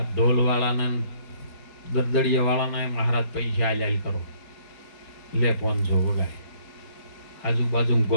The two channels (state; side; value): late; right; 4.4 ms